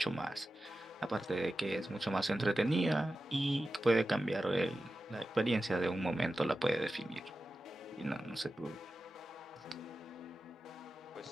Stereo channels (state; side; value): normal; both; correlation 0.93